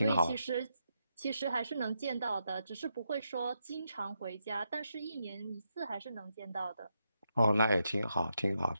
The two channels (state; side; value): inverted; both; correlation -0.83